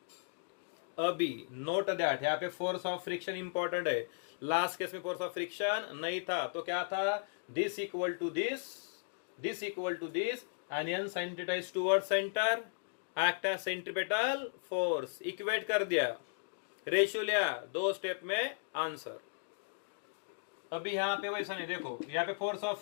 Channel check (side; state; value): right; silent; digital silence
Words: अभी नोट दैट यहाँ पे फोर्स ऑफ फ्रिक्शन इंपॉर्टेंट है. लास्ट केस में फोर्स ऑफ फ्रिक्शन नहीं था, तो क्या था, this equal to this, this equal to this, and n sin theta is toward centre, act as centripetal force. Equate कर दिया, रेशियो लिया, दो स्टेप में आंसर. अभी यहाँ पे वैसा नहीं. देखो यहाँ पे force of